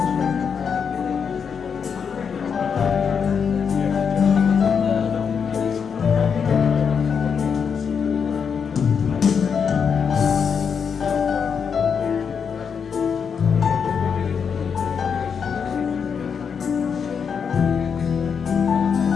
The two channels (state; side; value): quieter; right; 6.6 dB